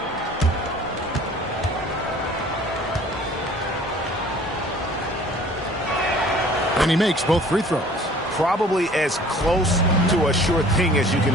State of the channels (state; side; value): normal; both; correlation 0.50